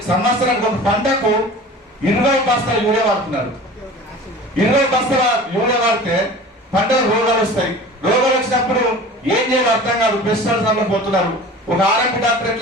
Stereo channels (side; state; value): both; normal; correlation 0.40